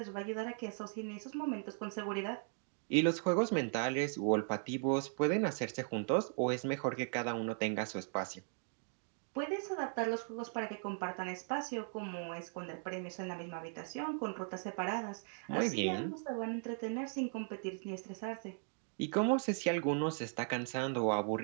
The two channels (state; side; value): silent; left; 52 dB below the other